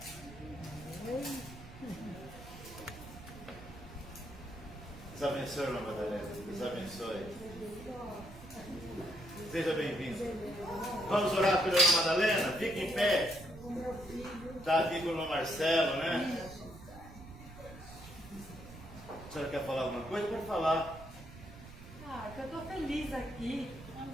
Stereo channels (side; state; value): right; noise; rumble, 16 dB below the sound